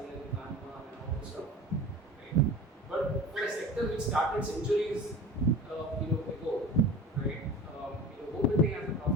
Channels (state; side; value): normal; both; correlation 0.37